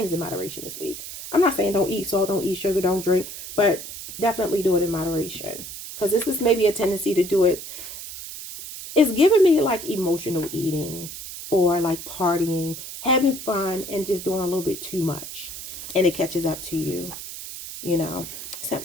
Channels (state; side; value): noise; right; hiss, 10 dB below the sound